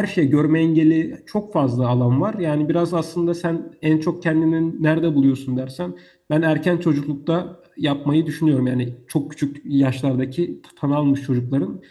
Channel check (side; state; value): both; identical; correlation 1.00